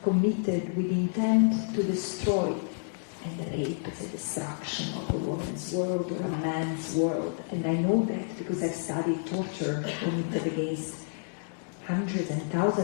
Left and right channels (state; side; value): silent; right; digital silence